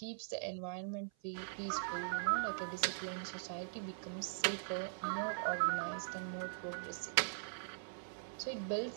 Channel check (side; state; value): left; silent; 50 dB below the other